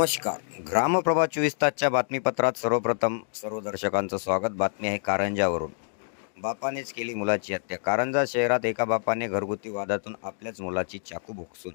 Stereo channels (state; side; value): silent; right; digital silence